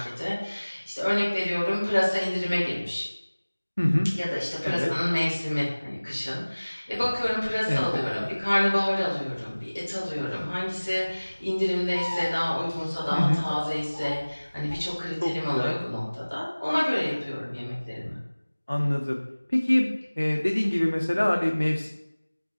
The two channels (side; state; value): both; inverted; correlation -1.00